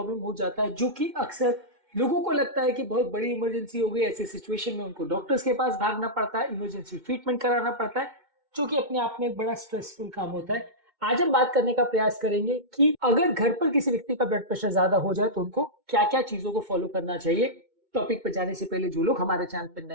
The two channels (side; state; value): left; late; 2.2 ms